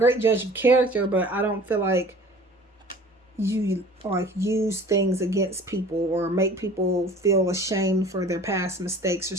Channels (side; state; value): both; normal; correlation 0.46